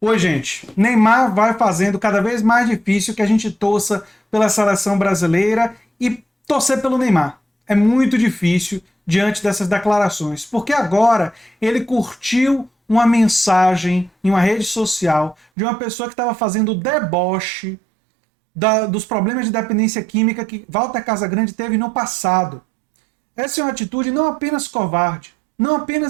Oi, gente. Neymar vai fazendo cada vez mais difícil que a gente torça pela seleção brasileira e torcer pelo Neymar. É muito difícil diante dessas declarações, porque agora ele curtiu uma mensagem em uma rede social de uma pessoa que estava fazendo deboche dos problemas de dependência química que Walter Casagrande teve no passado. Essa é uma atitude não apenas covarde, não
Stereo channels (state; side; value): drops out; left; at 15.5 s